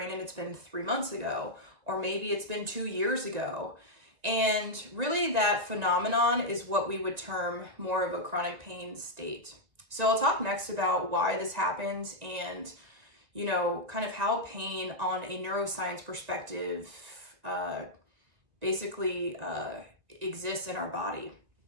and it's been 3 months ago, or maybe it's been 2 years ago? And really that phenomenon is what we would term more of a chronic pain state. So I'll talk next about why this happens and, kind of how pain on a neuroscience perspective basically exists in our body.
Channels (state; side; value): late; left; 1.9 ms